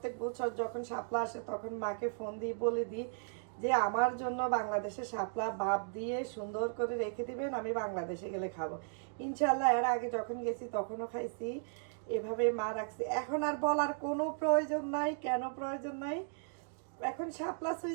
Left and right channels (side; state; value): left; silent; digital silence